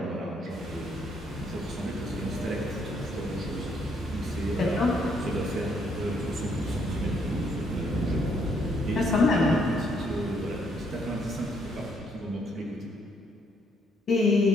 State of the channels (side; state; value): both; normal; correlation 0.70